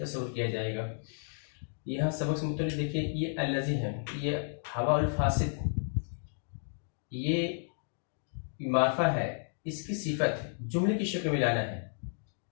किया जाएगा। यहाँ सबक से मुतल्लिक़ देखिए, ये अल्लज़ी है, ये हवा अल फासिद, ये मारफा है, इसकी सिफत जुमले की शक्ल में लाना है।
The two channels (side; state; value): right; silent; digital silence